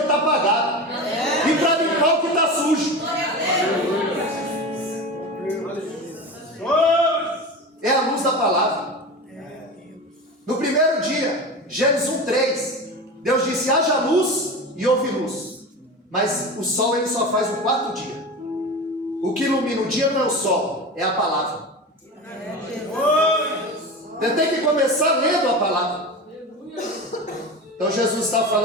apagado e para limpar o que está sujo. É a luz da palavra. No primeiro dia, Gênesis 1:3, Deus disse: haja luz e houve luz. Mas o sol ele só faz no quarto dia. O que ilumina o dia não é o sol, é a palavra. Você tem que começar lendo a palavra. Então Jesus está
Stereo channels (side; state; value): both; normal; correlation 0.28